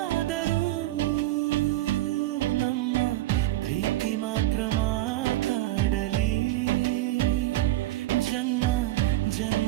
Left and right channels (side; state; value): left; quieter; 16.3 dB